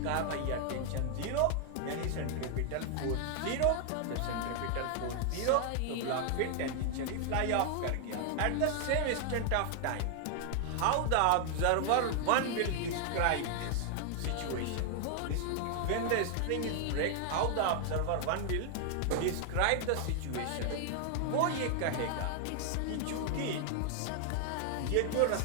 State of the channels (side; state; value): both; different; correlation 0.00